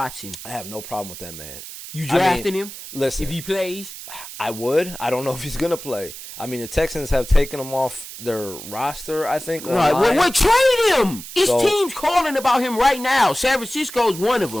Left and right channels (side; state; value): right; noise; hiss, 12 dB below the sound